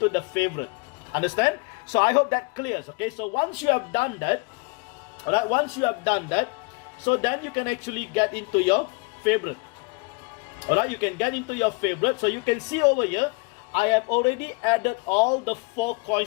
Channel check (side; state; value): right; quieter; 29.4 dB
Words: the favorite. Understand? So I hope that clears. Okay, so once you have done that, alright, once you have done that, so then you can actually get into your favorite. Alright, you can get into your favorite. So you can see over here, I have already added all the 4